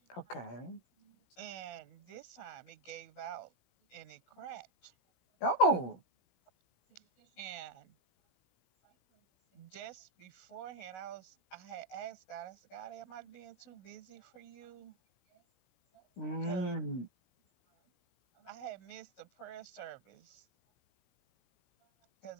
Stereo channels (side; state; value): right; late; 16 ms